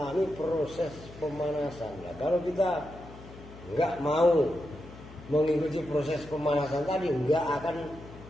proses pemanasan. Nah, kalau kita nggak mau mengikuti proses pemanasan tadi, nggak akan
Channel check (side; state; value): left; noise; hum, 17 dB below the sound